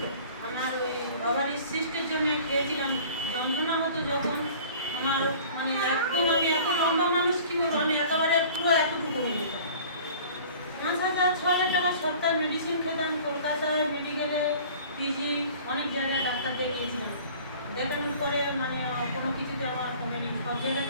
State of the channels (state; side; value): inverted; both; correlation -0.46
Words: আমার ওই ওভারি সিস্টের জন্য খেয়েছিলাম, যন্ত্রণা হতো যখন আমার, মানে একদম আমি এত লম্বা মানুষ কি বলবো, আমি একেবারে পুরো এতটুকু হয়ে যেতাম। 5,000-6,000 টাকা সপ্তাহে মেডিসিন খেতাম, কলকাতায় মেডিকেলে, পিজি, অনেক জায়গায় ডাক্তার দেখিয়েছিলাম। দেখানোর পরে মানে কোনো কিছুতে আমার কমেনি। সব